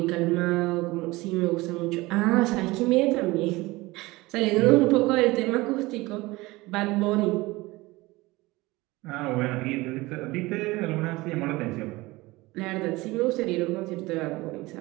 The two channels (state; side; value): quieter; left; 21.0 dB